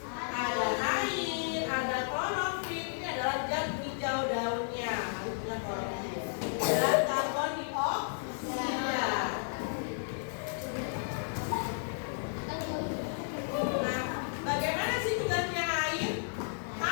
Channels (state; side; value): silent; right; 56 dB below the other